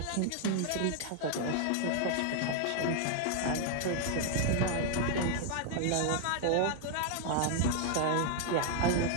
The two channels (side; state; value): both; different; correlation 0.00